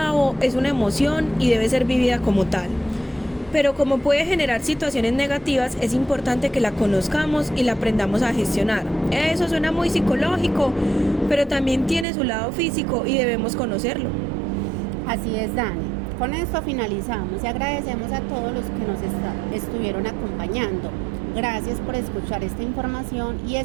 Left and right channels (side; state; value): left; drops out; at 12.1 s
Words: es una emoción y debe ser vivida como tal. Pero como puede generar situaciones negativas, es importante que la conozcamos y la aprendamos a gestionar. Eso suena muy psicológico, pero también tiene su lado físico y debemos conocerlo. Así es, Dani. Con esto finalizamos y agradecemos a todos los que nos estuvieron acompañando. Gracias por escuchar esta información y